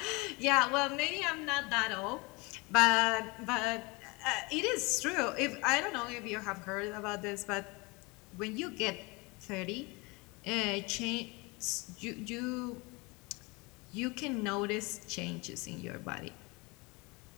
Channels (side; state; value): right; quieter; 26.6 dB